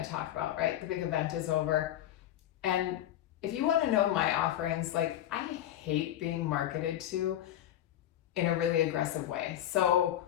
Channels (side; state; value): right; quieter; 12.2 dB